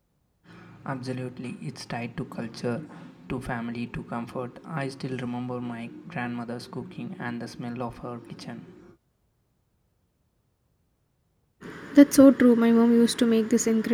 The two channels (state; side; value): identical; both; correlation 1.00